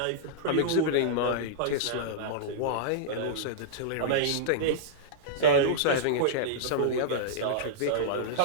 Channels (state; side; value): different; both; correlation -0.03